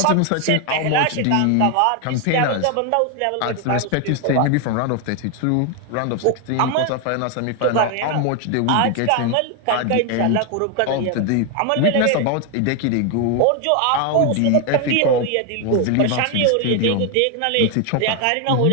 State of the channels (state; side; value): different; both; correlation 0.01